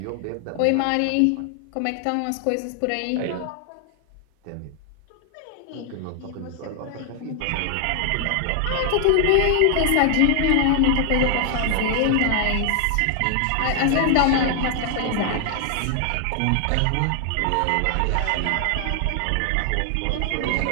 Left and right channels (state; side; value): different; both; correlation 0.00